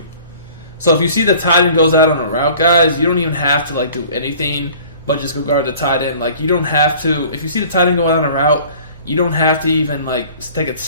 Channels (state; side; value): inverted; both; correlation -0.48